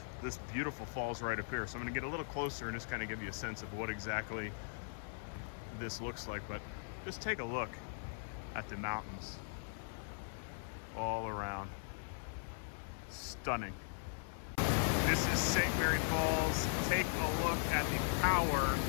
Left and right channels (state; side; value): silent; right; 52 dB below the other